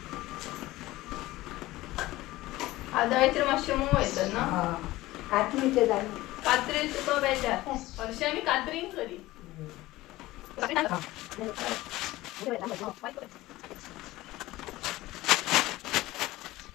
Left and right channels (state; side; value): quieter; right; 17.9 dB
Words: आदळेचेर मातशें मोव येतात ना, कात्रीचे जाय कात्रेन तुका बेजार, हरशीं आमी कात्रीन करी।